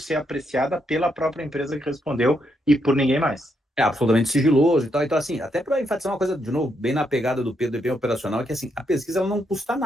apreciada pela própria empresa que respondeu e por ninguém mais. É absolutamente sigiloso e tal. Então, assim, até para enfatizar uma coisa, de novo, bem na pegada do Pedro e bem operacional, é que assim, a pesquisa ela não custa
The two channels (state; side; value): normal; both; correlation 0.78